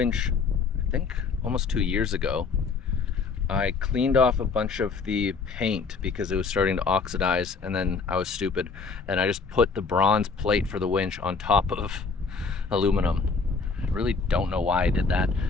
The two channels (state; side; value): quieter; right; 4.9 dB